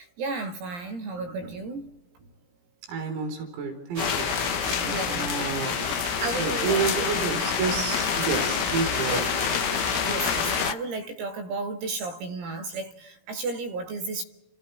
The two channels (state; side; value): late; left; 17 ms